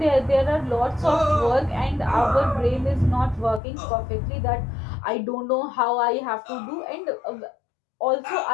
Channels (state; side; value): drops out; right; at 3.6 s